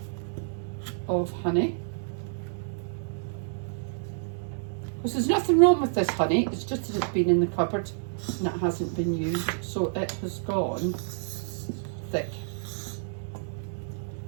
of honey. Because there's nothing wrong with this honey, it's just that it's been in the cupboard and it hasn't been used, so it has gone thick.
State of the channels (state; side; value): silent; left; digital silence